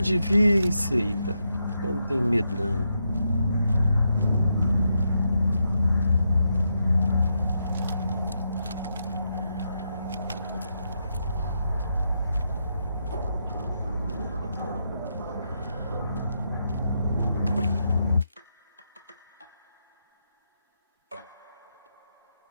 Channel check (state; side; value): inverted; both; correlation -0.82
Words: vir, seita. Eu não tenho medo, não.